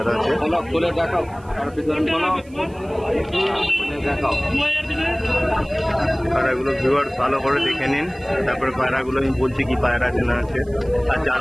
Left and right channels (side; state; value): right; noise; hiss, 29 dB below the sound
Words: আছে। পায়রাগুলো ভিউয়ার্স ভালো করে দেখে নিন, তারপরে পায়রাগুলো আমি বলছি কি পায়রা আছে না আছে। আর